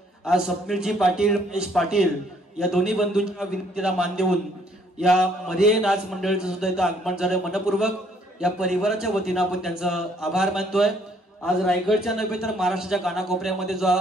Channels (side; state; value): both; normal; correlation 0.65